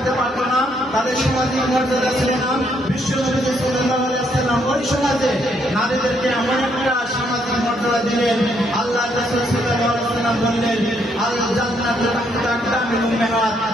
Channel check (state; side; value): normal; both; correlation 0.72